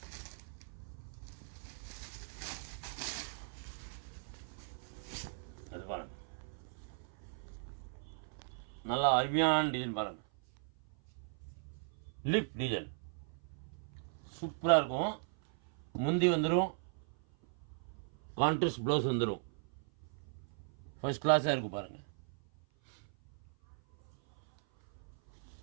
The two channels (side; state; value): left; silent; 52 dB below the other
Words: அது பாருங்க, நல்லா அருமையான டிசைன் பாருங்க. லிப் டிசைன் சூப்பராக இருக்கும். முந்தி வந்துடும், கான்ட்ராஸ்ட் ப்ளவுஸ் வந்துடும். ஃபர்ஸ்ட் கிளாஸாக இருக்கும் பாருங்க.